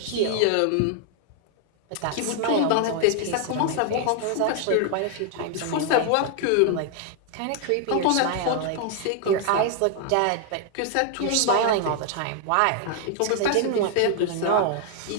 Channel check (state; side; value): different; both; correlation 0.00